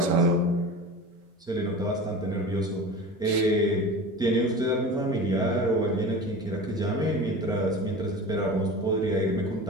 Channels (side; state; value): both; normal; correlation 0.33